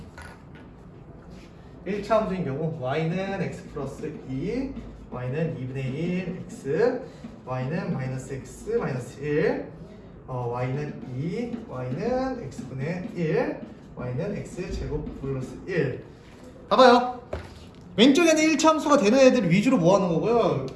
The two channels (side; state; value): both; identical; correlation 1.00